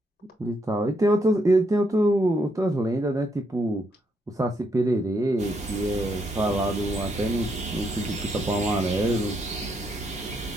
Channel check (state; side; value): normal; both; correlation 0.76